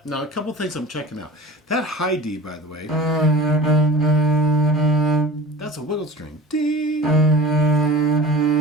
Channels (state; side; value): normal; both; correlation 0.37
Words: Now, a couple things I'm checking out. That high D, by the way, that's a wiggle string. D,